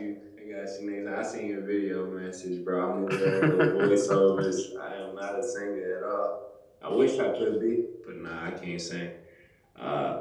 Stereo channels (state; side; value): identical; both; correlation 1.00